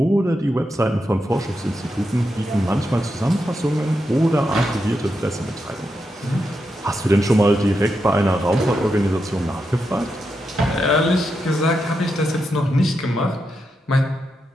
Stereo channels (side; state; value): both; normal; correlation 0.85